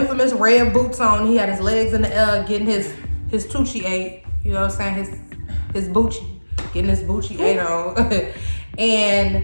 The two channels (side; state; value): both; inverted; correlation -1.00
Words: red boots on. He had his legs in the air getting his Tucci ate. You know what I'm saying? His Bucci. Getting his Bucci ate on.